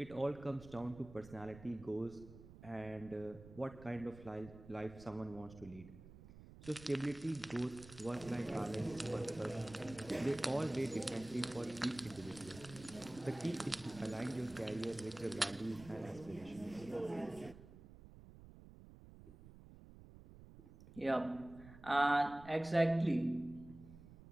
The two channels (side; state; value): right; noise; rumble, 17 dB below the sound